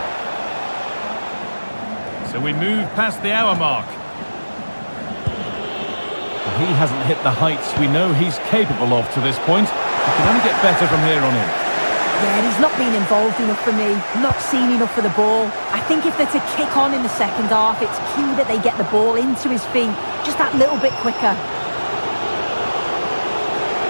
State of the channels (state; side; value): inverted; both; correlation -1.00